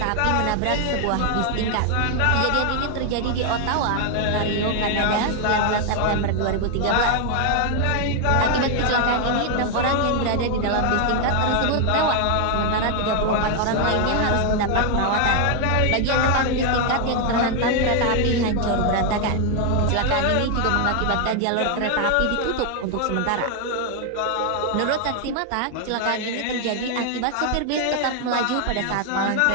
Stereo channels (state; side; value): different; both; correlation 0.00